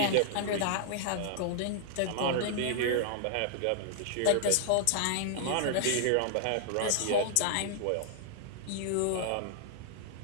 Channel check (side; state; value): both; different; correlation -0.01